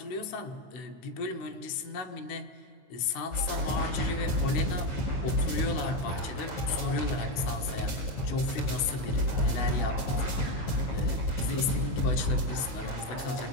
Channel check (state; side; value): late; right; 16 ms